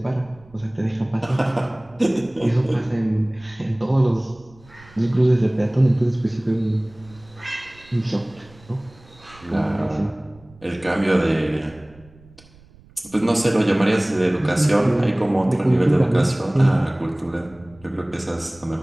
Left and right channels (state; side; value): noise; right; rumble, 26 dB below the sound